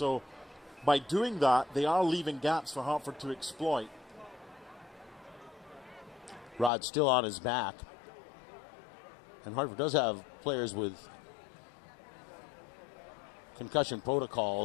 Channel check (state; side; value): drops out; right; at 6.7 s